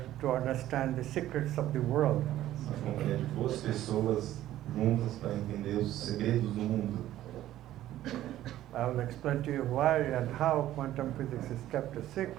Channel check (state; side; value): quieter; left; 13.5 dB